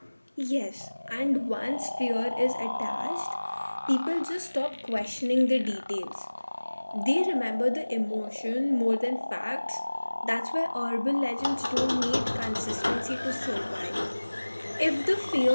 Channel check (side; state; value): both; inverted; correlation -1.00